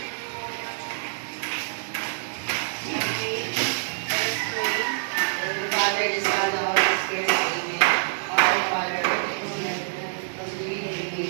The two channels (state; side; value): silent; left; digital silence